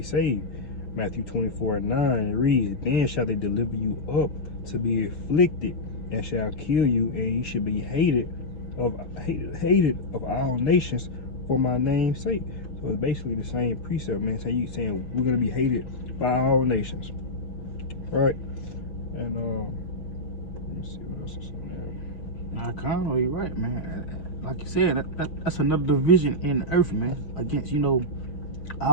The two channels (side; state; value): right; late; 6.5 ms